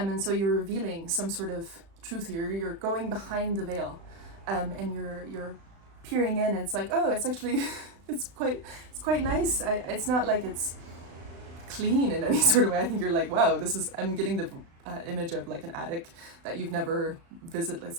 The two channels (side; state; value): left; late; 36 ms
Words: so you're revealing some sort of truth here. You're going behind the veil, and you're peering in, and it's like, oh, it's actually it's quite nice. It's not like it's clean in any sort of way. I think you're like, wow, I'm getting the image of like an attic that you've never visited. It's